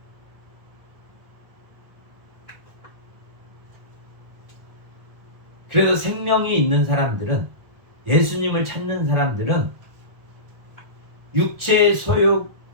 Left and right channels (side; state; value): left; late; 1.4 ms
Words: 그래서 생명이 있는 사람들은, 예수님을 찾는 사람들은 육체의